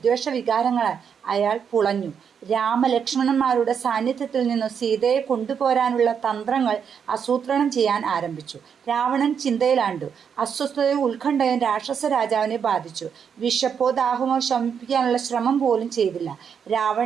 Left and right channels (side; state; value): left; quieter; 7.2 dB